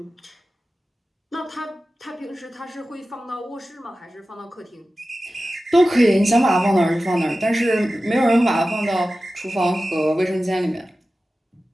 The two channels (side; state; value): both; normal; correlation 0.95